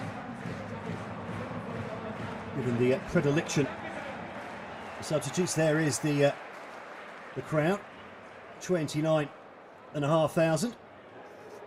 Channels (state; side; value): identical; both; correlation 1.00